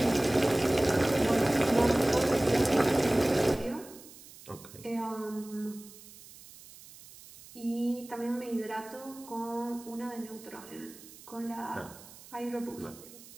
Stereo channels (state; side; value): noise; right; hiss, 19 dB below the sound